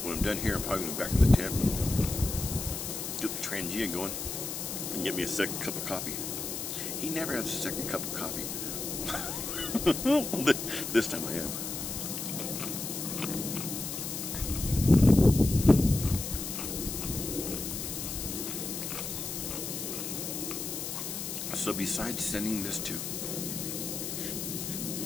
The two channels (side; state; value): left; noise; hiss, 5 dB below the sound